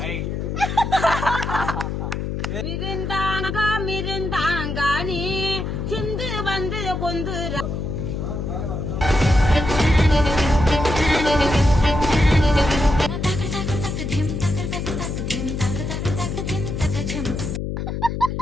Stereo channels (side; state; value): left; noise; hum, 3 dB below the sound